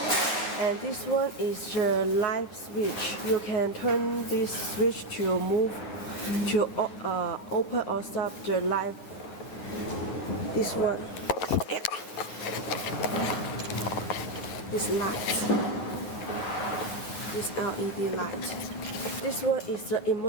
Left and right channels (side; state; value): right; late; 9.7 ms